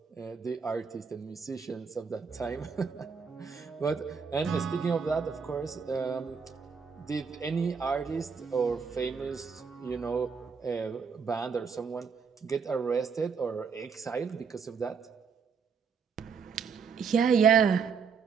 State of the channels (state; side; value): quieter; left; 5.9 dB